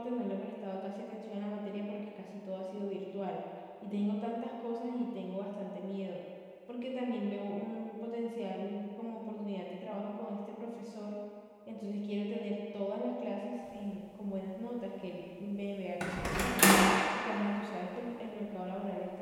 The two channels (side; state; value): both; identical; correlation 1.00